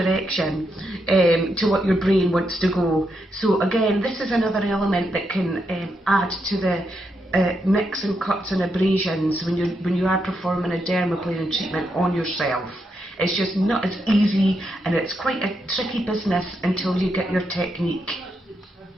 to what your brain wants to go. So again, this is another element that can add to the nicks and cuts and abrasions when you are performing a dermaplaning treatment on yourself. It's just not as easy, and it's quite a tricky business until you get your technique.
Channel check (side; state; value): both; normal; correlation 0.82